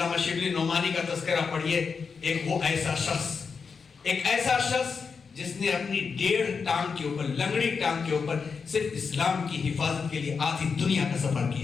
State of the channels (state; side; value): quieter; right; 5.5 dB